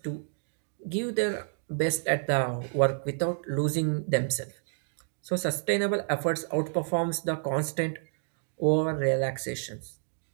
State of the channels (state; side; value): silent; left; digital silence